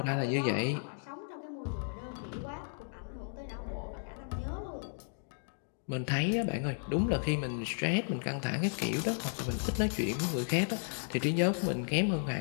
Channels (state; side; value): silent; right; digital silence